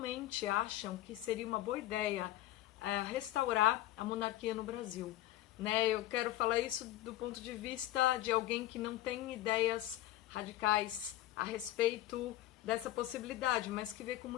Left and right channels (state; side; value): quieter; right; 14.7 dB